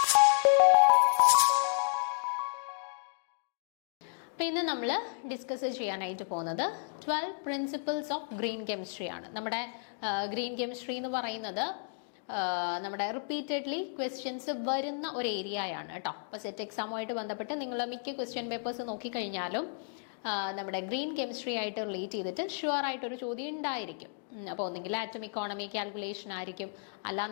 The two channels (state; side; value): silent; right; digital silence